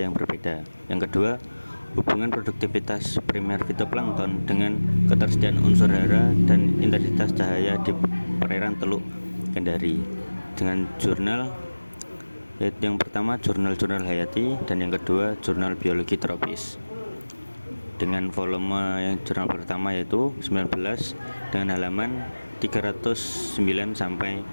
yang berbeda. Yang kedua, hubungan produktivitas primer fitoplankton dengan ketersediaan unsur hara dan intensitas cahaya di perairan Teluk Kendari. Dengan jurnal, yaitu yang pertama jurnal hayati dan yang kedua jurnal biologi tropis. Dengan volume yang jurnal pertama yaitu 19 dengan halaman 309 sampai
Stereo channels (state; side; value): inverted; both; correlation -1.00